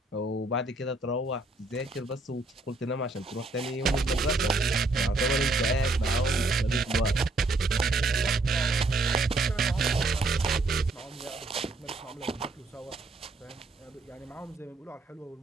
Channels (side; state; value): left; quieter; 3.0 dB